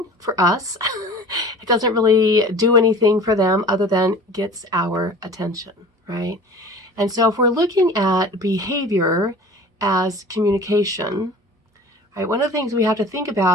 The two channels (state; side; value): normal; both; correlation 0.42